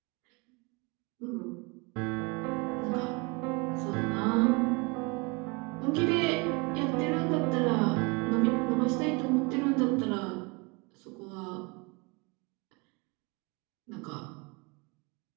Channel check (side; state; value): left; quieter; 28.3 dB